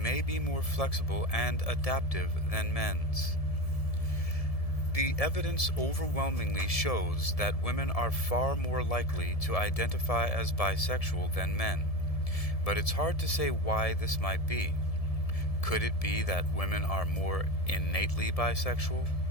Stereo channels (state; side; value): late; right; 1.7 ms